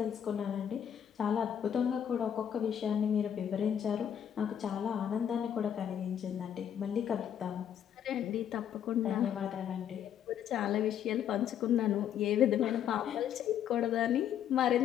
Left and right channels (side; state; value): right; quieter; 9.3 dB